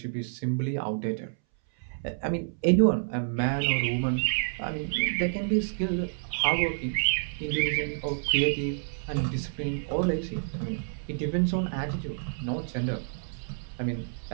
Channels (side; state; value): left; silent; 59 dB below the other